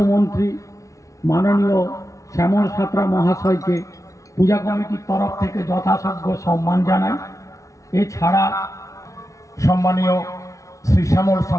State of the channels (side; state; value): right; late; 0.15 ms